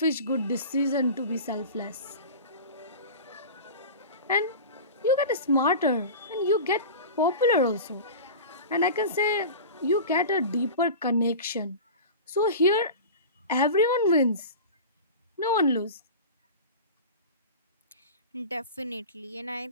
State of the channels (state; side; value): inverted; both; correlation -0.32